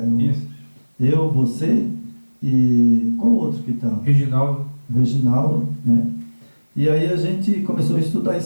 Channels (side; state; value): both; inverted; correlation -1.00